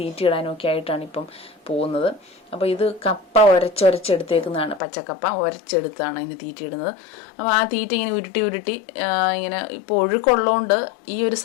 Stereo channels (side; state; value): right; drops out; at 4.8 s